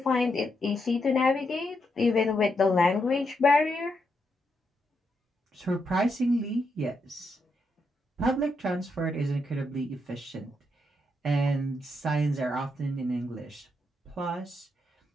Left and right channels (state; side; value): normal; both; correlation 0.81